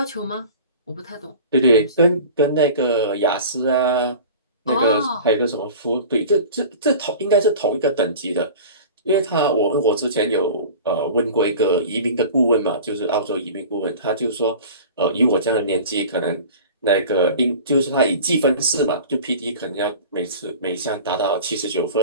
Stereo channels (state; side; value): inverted; both; correlation -0.39